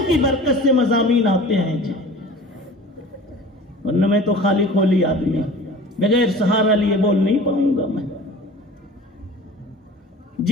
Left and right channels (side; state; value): both; normal; correlation 0.41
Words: کی برکت سے مضامین آتے ہیں جی، ورنہ میں تو خالی کھولی آدمی، بغیر سہارا لیے بول نہیں پاؤں گا میں۔